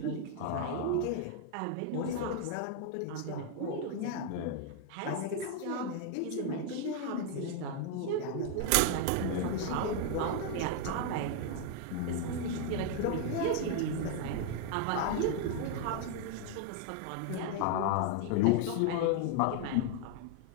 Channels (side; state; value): both; different; correlation 0.00